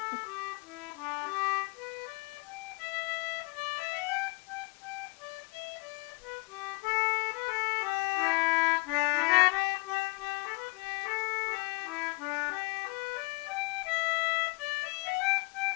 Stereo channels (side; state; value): right; quieter; 26.5 dB